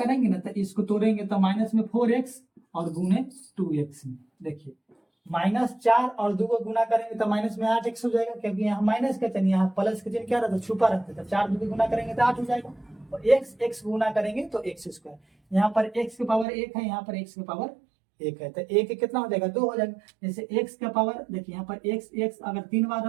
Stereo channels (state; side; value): drops out; left; at 16.4 s